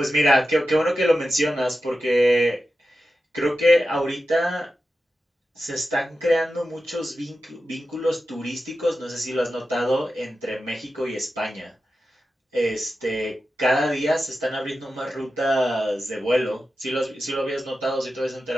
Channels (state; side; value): normal; both; correlation 0.92